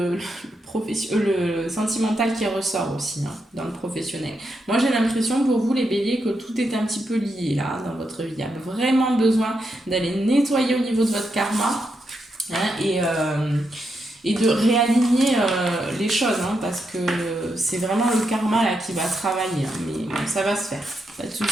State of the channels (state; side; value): normal; both; correlation 0.83